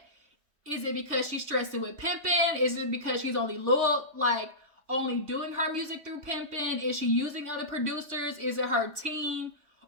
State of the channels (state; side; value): late; left; 3.2 ms